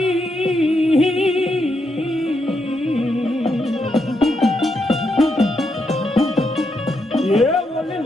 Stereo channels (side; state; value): both; normal; correlation 0.81